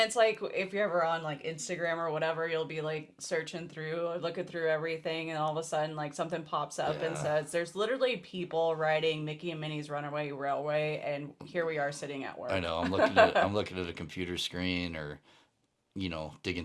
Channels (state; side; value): identical; both; correlation 1.00